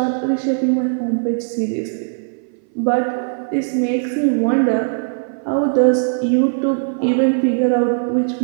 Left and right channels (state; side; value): silent; left; 59 dB below the other